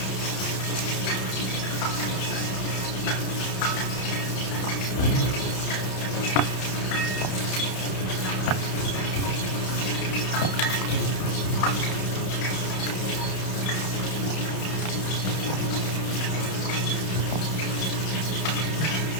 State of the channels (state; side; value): late; right; 31 ms